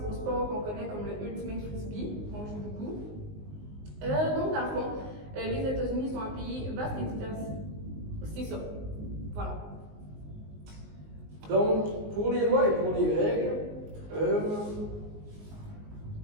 au sport qu'on connaît comme le Ultimate Frisbee, qu'on joue beaucoup. Donc, dans le fond, les États-Unis sont un pays vaste et C'est ça. Voilà. Donc, pour les lois et pour les règles,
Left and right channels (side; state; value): left; late; 19 ms